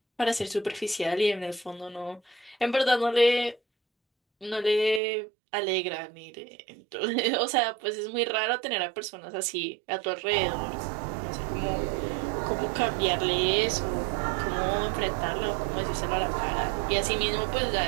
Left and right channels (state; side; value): drops out; left; at 5.0 s